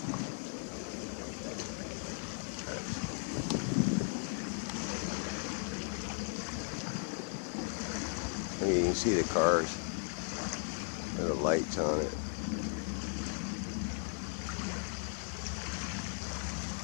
I mean, you can see the cars with the lights on it.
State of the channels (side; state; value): right; silent; 53 dB below the other